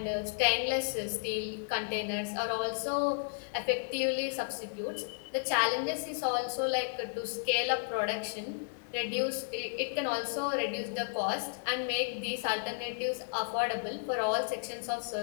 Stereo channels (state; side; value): silent; right; digital silence